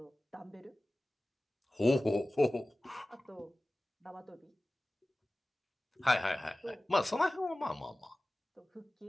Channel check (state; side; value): normal; both; correlation 0.97